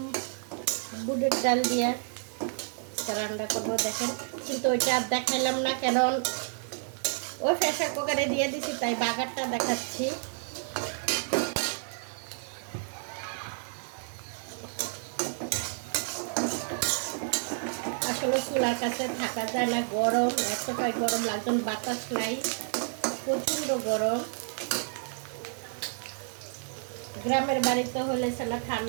বুটের ডাল দিয়া রান্না করবো। দেখেন, কিন্তু ওইটা আর দেখাইলাম না, কারণ ওই প্রেসার কুকারে দিয়ে দিছি, তাই বাগারটা দেখাচ্ছি। আসলে চুলার কাছে থাকা যায় না, গরম, এতটাই গরম লাগছে, বাতাস নাই, প্রচণ্ড গরম। গ্রামের বাড়িতে হলে সেটা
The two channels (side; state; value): left; silent; digital silence